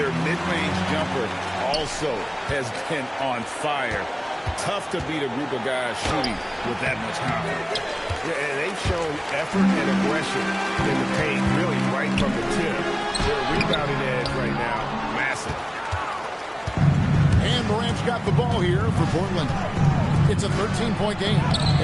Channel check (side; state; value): both; identical; correlation 1.00